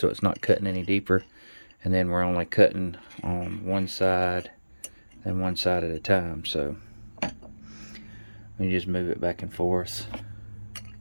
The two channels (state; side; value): inverted; both; correlation -1.00